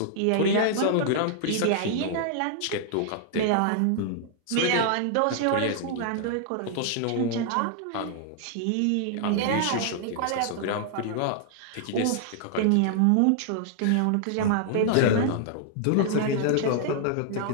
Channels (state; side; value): different; both; correlation -0.01